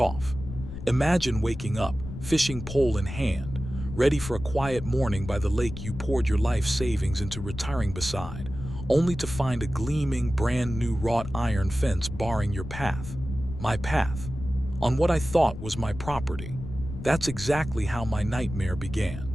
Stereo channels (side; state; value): left; noise; rumble, 10 dB below the sound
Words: Imagine waking up, fishing pole in hand, ready for a quiet morning by the lake you poured your life savings into retiring beside, only to find a gleaming, brand-new wrought iron fence barring your path. My path. On what I thought was my property. That's exactly how my nightmare began.